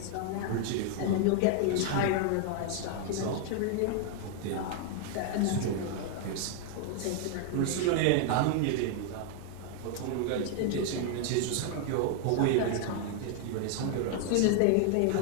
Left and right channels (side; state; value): both; different; correlation 0.00